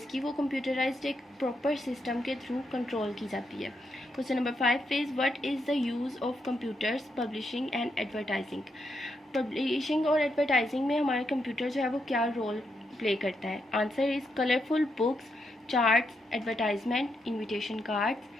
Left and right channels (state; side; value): normal; both; correlation 0.81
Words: की वो कंप्यूटराइज्ड एक प्रॉपर सिस्टम के थ्रू कंट्रोल की जाती है। Question number 5 is, what is the use of computers publishing and advertising. Publishing और एडवर्टाइजिंग में हमारा कंप्यूटर जो है वो क्या रोल प्ले करता है? Answer is colourful books, charts, advertisement, invitation